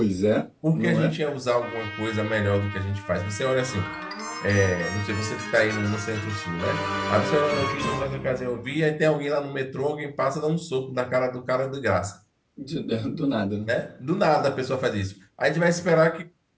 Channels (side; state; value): both; identical; correlation 1.00